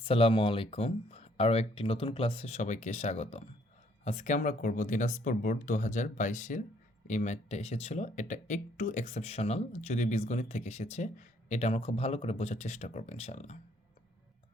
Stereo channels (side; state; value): both; normal; correlation 0.65